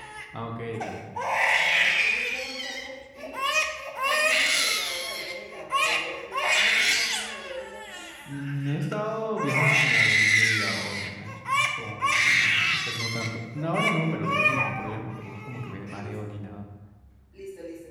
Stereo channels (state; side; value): identical; both; correlation 1.00